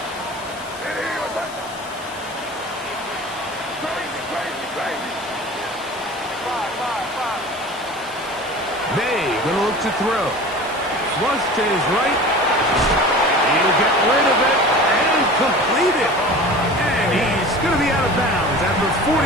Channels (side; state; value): left; noise; hiss, 19 dB below the sound